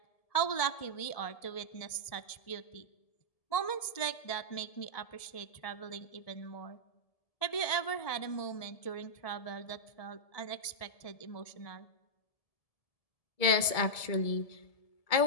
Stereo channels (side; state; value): right; late; 1.7 ms